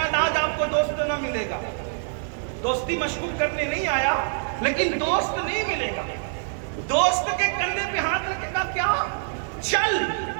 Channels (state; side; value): silent; left; digital silence